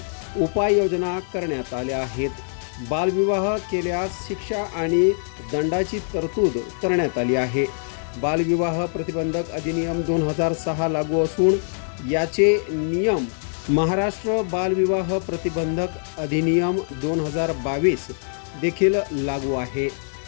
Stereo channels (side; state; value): right; silent; 58 dB below the other